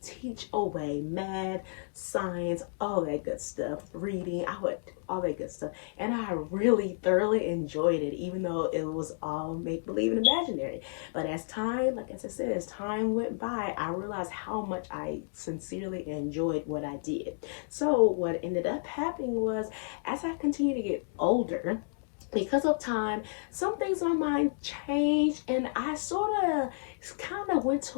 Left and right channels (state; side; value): silent; right; digital silence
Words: teach away math, science, all that good stuff, reading. I would all that good stuff. And I really thoroughly enjoyed it, even though it was all make believe and imaginary. But as time, like as I said, as time went by, I realized how much I sincerely enjoyed what I did. So what ended up happening was, as I continued to get older, because of time, some things in my mind changed, and I sort of kind of went